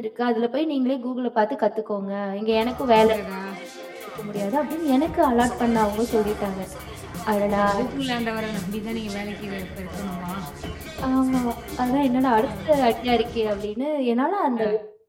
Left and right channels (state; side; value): identical; both; correlation 1.00